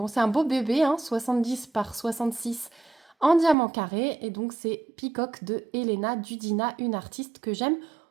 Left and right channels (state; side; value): drops out; left; at 3.6 s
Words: c'est un beau bébé, hein, 70 par 66 en diamant carré. Et donc c'est Peacock de Elena Dudina, une artiste que j'aime